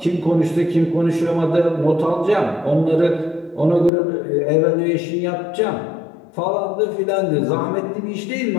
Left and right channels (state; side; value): drops out; right; at 3.9 s